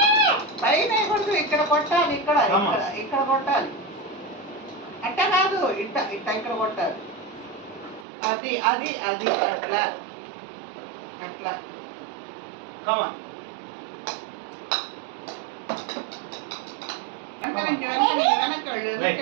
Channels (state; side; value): drops out; left; at 8.1 s